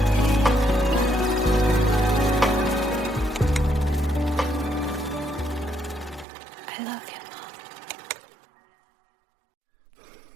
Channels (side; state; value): left; drops out; at 6.2 s